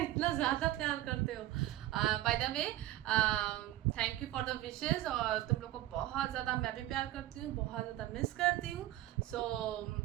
ज़्यादा प्यार करते हो। By the way thank you for the wishes. और तुम लोग को बहुत ज़्यादा मैं भी प्यार करती हूँ, बहुत ज़्यादा मिस करती हूँ। सो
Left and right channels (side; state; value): left; quieter; 15.0 dB